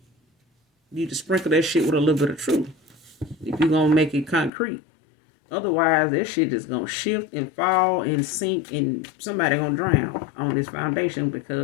to sprinkle that shit with a little bit of truth. If you're gonna make it concrete. Otherwise, that shit is gonna shift and fall and sink, and somebody gonna drown on this foundation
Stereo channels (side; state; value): right; drops out; at 4.5 s